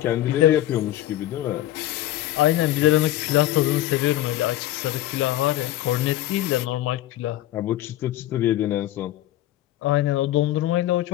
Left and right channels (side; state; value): right; quieter; 14.2 dB